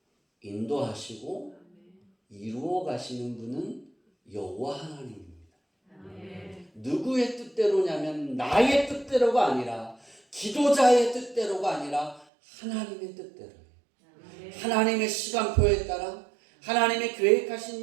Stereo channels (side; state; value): left; drops out; at 12.2 s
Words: 인도하시고 이루어 가시는 분은 여호와 하나님입니다. 누구의 뜻대로냐면 나의 뜻대로가 아니라 기도자의 뜻대로가 아니라 하나님의 뜻대로예요. 하나님의 시간표에 따라 하나님의